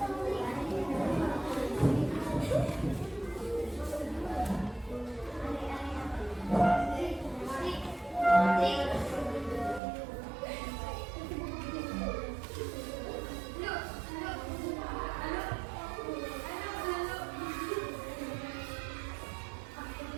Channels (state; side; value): drops out; left; at 9.8 s